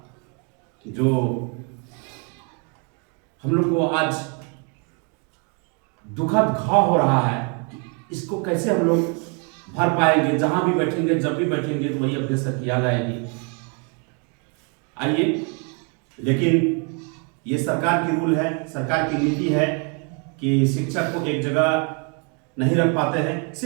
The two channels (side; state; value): left; quieter; 36.6 dB